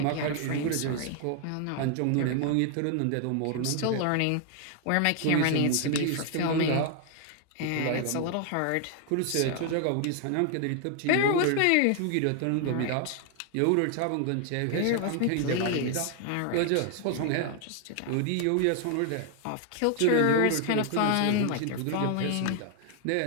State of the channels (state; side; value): different; both; correlation 0.00